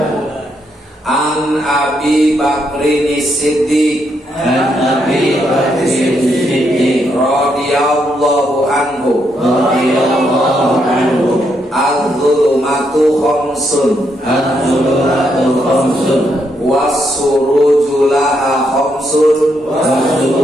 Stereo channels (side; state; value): both; normal; correlation 0.77